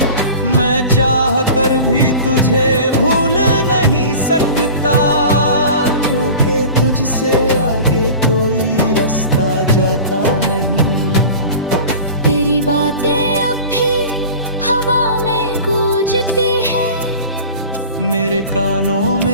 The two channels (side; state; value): both; inverted; correlation -0.38